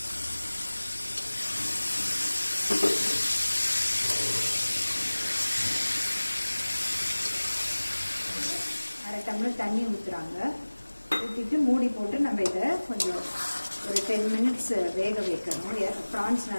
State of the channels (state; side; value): inverted; both; correlation -1.00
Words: அரை டம்ளர் தண்ணி ஊற்றுறாங்க. ஊற்றிட்டு மூடி போட்டு நம்ம இதை கொஞ்சம் ஒரு 10 மினிட்ஸ் வேக வைக்கணும். ப்ரான்ஸ்